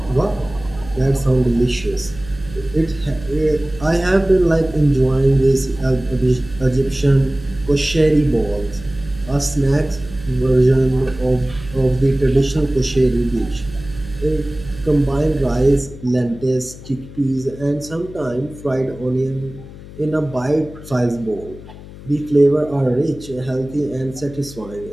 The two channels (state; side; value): noise; left; hum, 16 dB below the sound